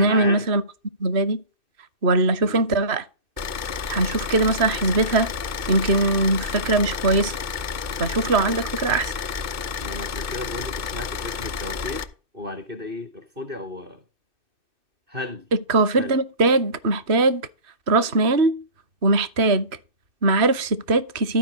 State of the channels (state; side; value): late; left; 2.6 ms